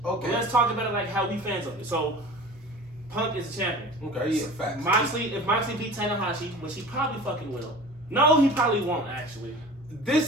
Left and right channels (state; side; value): normal; both; correlation 0.39